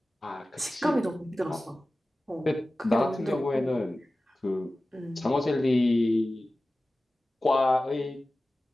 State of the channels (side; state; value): both; normal; correlation 0.96